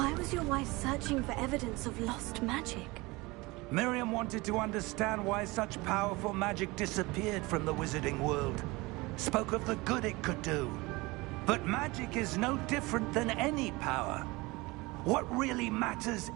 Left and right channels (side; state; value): left; quieter; 23.0 dB